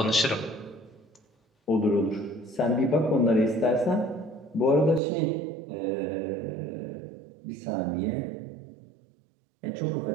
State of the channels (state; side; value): drops out; left; at 5.0 s